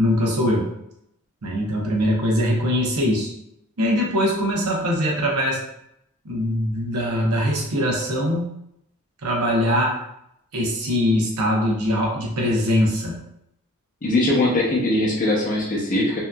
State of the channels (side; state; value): both; normal; correlation 0.51